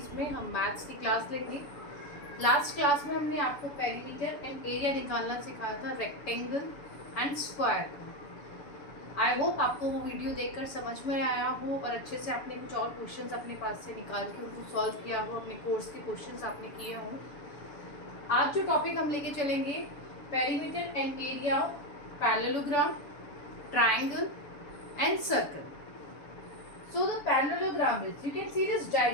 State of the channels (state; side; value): late; right; 7.0 ms